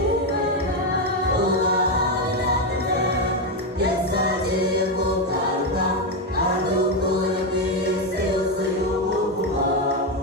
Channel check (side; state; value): both; normal; correlation 0.08